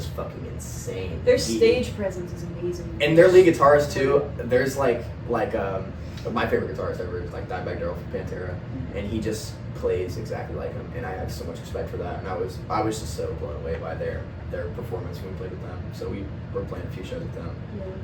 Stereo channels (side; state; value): both; identical; correlation 1.00